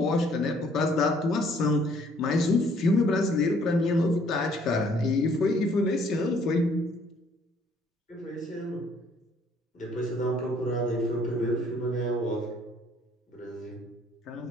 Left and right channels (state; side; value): normal; both; correlation 0.62